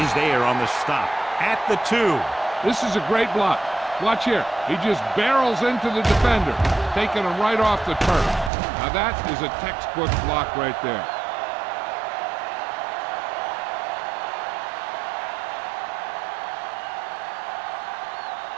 is there on the stop at the 2. This is a great block. Watch here. He just barrels into the defender, taking him right off the turf. Now that is a textbook block right there.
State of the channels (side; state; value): left; drops out; at 8.5 s